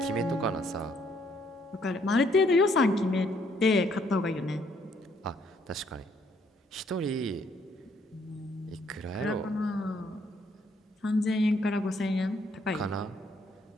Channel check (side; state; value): both; normal; correlation 0.68